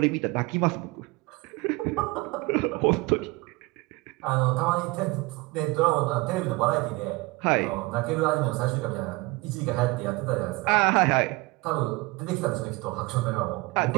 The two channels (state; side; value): quieter; left; 23.4 dB